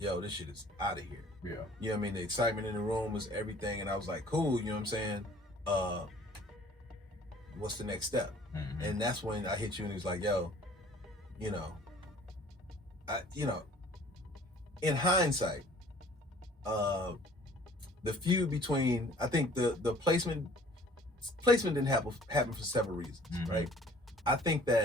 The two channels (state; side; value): normal; both; correlation 0.53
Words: this shit is out of here. Yeah. You know what I mean? The excitement in the room was everything. And I was like, cool, you know what I'm saying? What's the next step? And that's when I hit you and he was like, yo, you know, in hindsight, the feud between, I think the placement didn't happen for several reasons, right? I think